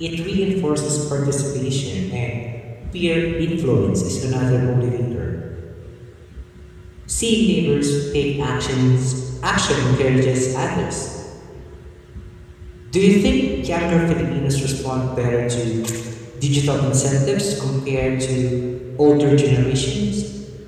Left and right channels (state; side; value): identical; both; correlation 1.00